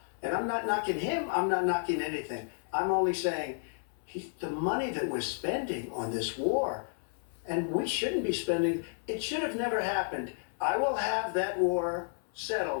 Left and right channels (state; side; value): silent; right; 56 dB below the other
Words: And I'm not knocking him. I'm not knocking anything. I'm only saying the money that we're spending on this war, and we shouldn't be spending, it should have never happened. I will have that war